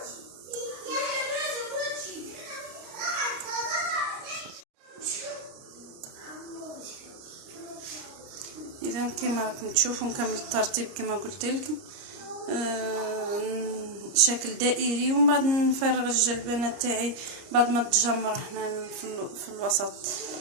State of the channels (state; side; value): late; left; 30 ms